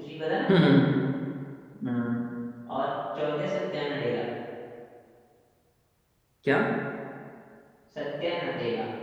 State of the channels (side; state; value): both; identical; correlation 1.00